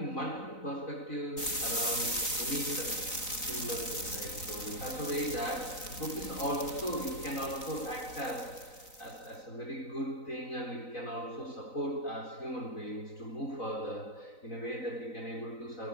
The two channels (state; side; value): late; right; 3.9 ms